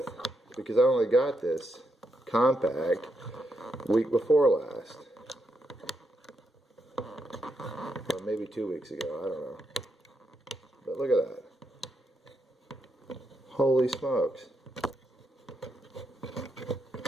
because I only got this compact week before last. Or maybe 2 weeks ago, I don't know. But look at that. Holy smokes.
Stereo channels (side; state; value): both; normal; correlation 0.81